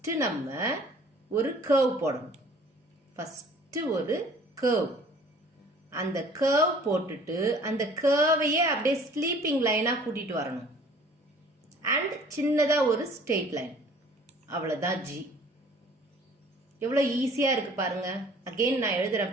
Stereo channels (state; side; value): normal; both; correlation 0.52